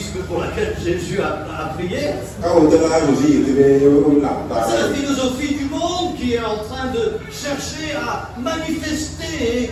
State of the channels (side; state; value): both; identical; correlation 1.00